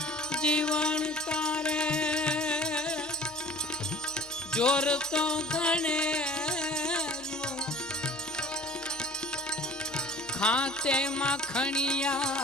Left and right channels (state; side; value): normal; both; correlation 0.45